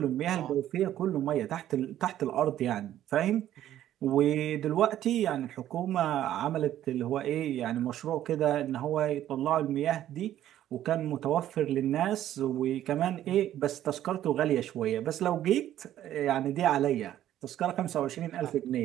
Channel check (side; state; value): left; quieter; 12.2 dB